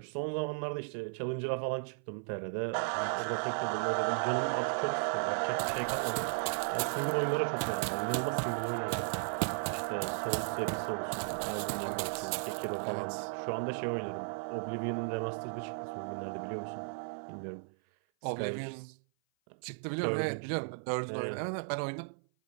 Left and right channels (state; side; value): silent; left; 54 dB below the other